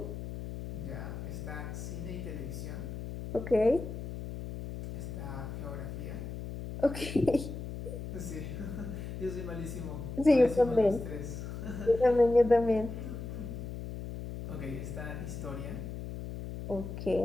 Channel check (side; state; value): left; noise; hum, 7 dB below the sound